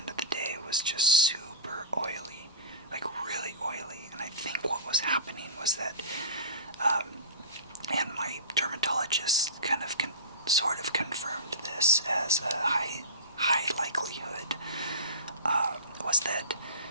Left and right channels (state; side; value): inverted; both; correlation -0.30